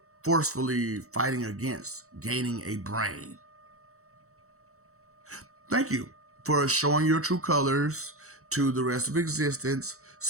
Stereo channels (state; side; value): late; left; 0.64 ms